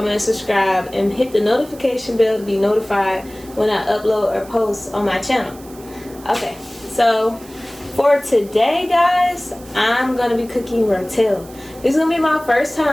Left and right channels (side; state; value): right; noise; hiss, 21 dB below the sound